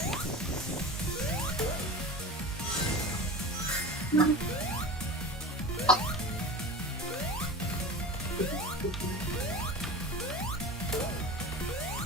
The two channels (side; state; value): both; normal; correlation 0.33